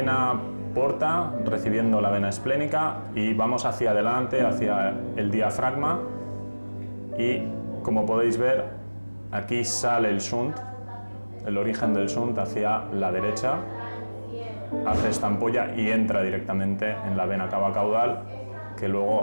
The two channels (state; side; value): inverted; both; correlation -1.00